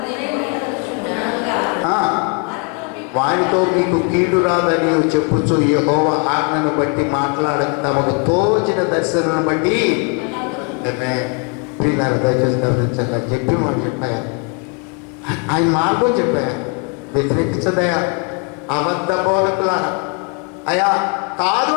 వారితో మీకు కీడు రాదని చెప్పుచు యెహోవా ఆజ్ఞను బట్టి మాట్లాడక తమకు తోచిన దర్శనను బట్టి ప్రియులారా దయచేసి గమనించాలి. చెప్పి మాట చెప్పాయా, ఆయన మార్గం చెప్పాయా, వ్యతిరేకించదయా అబద్ధ బోధకులారా. అయ్యా కాదు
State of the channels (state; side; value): quieter; right; 33.9 dB